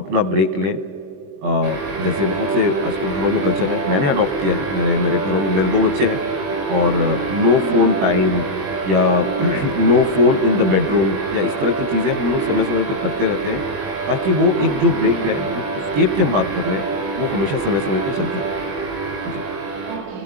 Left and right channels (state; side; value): late; left; 21 ms